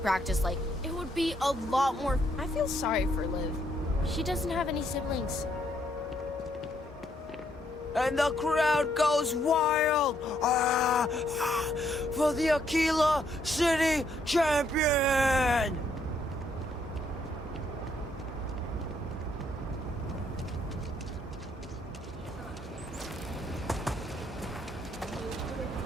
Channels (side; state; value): both; normal; correlation 0.72